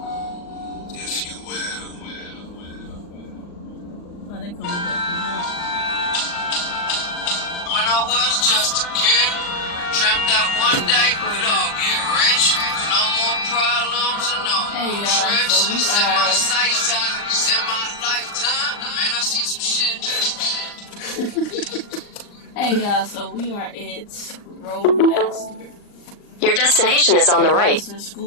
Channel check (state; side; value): late; right; 39 ms